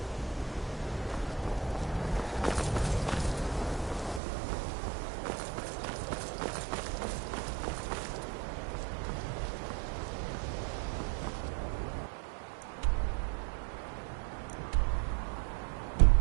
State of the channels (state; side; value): drops out; left; at 4.2 s